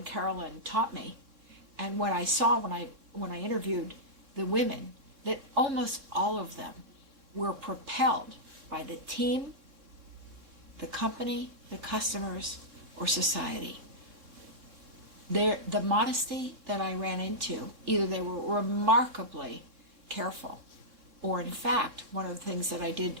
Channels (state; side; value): late; left; 3.6 ms